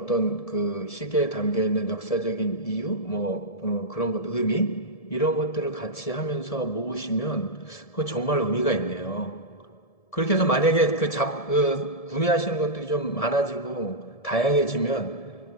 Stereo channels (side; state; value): right; late; 1.7 ms